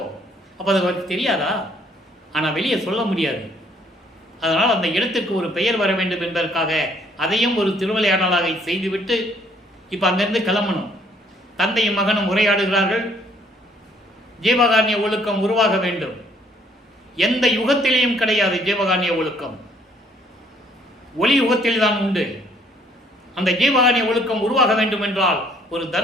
அது அவருக்கு தெரியாதா? ஆனால் வெளியே சொல்ல முடியாது. அதனால் அந்த இடத்திற்கு ஒரு பெயர் வர வேண்டும் என்பதற்காக அதையும் ஒரு திருவிளையாடலாக செய்துவிட்டு இப்போ அங்கிருந்து கிளம்பணும். தந்தையும் மகனும் உரையாடுகிறார்கள். ஜீவகாருண்ய ஒழுக்கம் உருவாக வேண்டும். எந்த யுகத்திலேயும் கிடையாது ஜீவகாருண்ய ஒழுக்கம், ஒளி யுகத்தில் தான் உண்டு. அந்த ஜீவகாருண்ய ஒழுக்கம் உருவாக வேண்டும் என்றால் ஒரு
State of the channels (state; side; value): normal; both; correlation 0.63